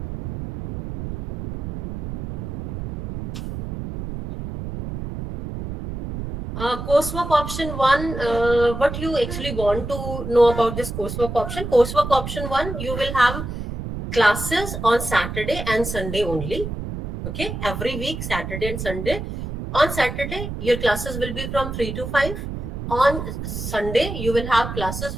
Coursework option 1, what you actually want to know about this coursework option? Coursework option 1, you will have classes on Saturday and Sunday only. Okay, every week, Saturday and Sunday. On Saturday, your classes will be from 3 to 5. On Sunday, you will have classes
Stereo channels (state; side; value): noise; right; rumble, 6 dB below the sound